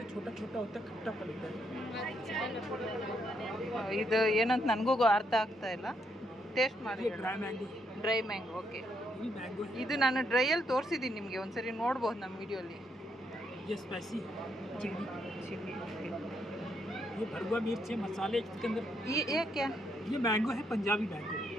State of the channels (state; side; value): normal; both; correlation 0.76